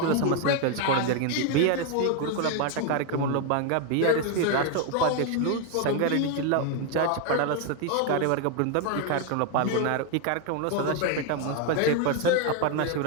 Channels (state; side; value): different; both; correlation 0.01